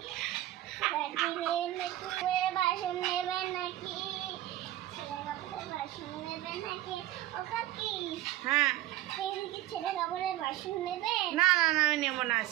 বাসন নেবেন নাকি, ছেঁড়া কাপড়ের বাসন নেবেন নাকি? ও কাকি, হ্যাঁ, এদিকে ছেঁড়া কাপড়ের বাসন নেবে? না না না, আমি নেবো না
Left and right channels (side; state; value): left; quieter; 15.1 dB